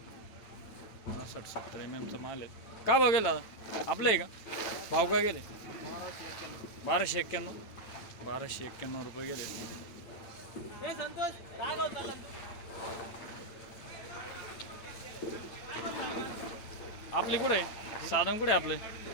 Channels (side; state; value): right; late; 8.9 ms